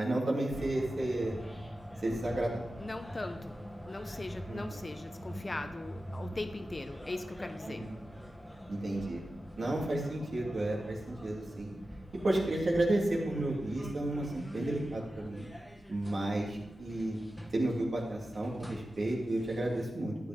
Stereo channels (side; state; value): both; normal; correlation 0.93